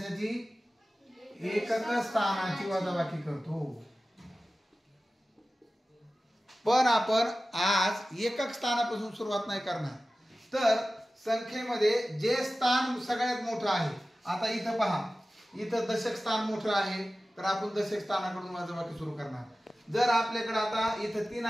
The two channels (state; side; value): normal; both; correlation 0.96